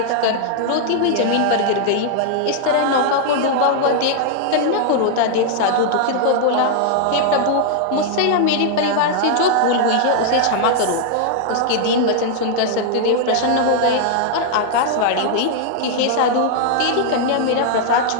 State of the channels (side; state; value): both; different; correlation -0.01